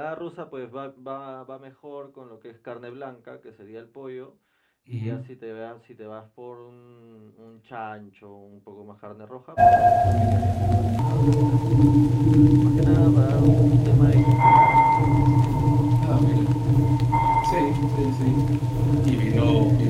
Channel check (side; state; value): both; identical; correlation 1.00